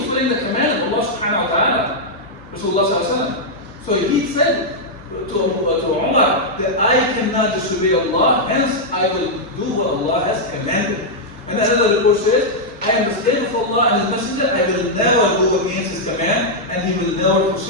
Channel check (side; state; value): both; normal; correlation -0.04